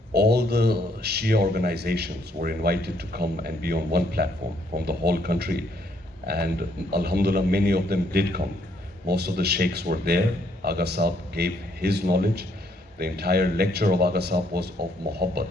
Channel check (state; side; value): normal; both; correlation 0.70